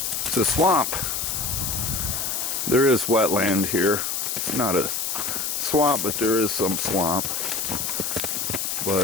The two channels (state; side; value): noise; left; hiss, 1 dB below the sound